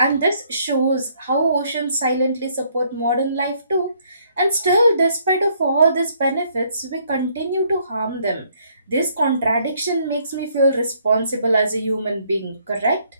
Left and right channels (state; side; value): inverted; both; correlation -0.67